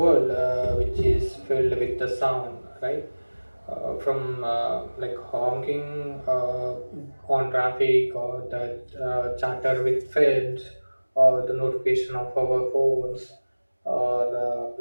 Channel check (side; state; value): both; inverted; correlation -1.00